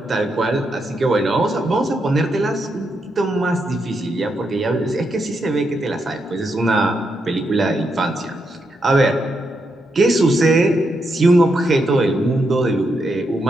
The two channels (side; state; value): both; normal; correlation 0.82